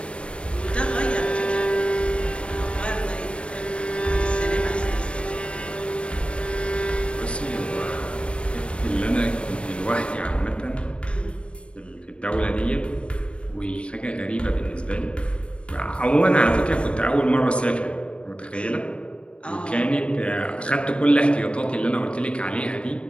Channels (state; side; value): late; right; 0.057 ms